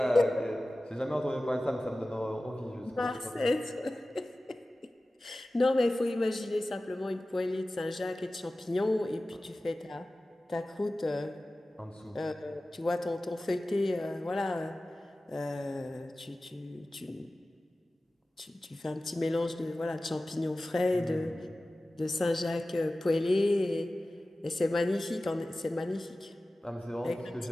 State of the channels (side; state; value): both; normal; correlation 0.96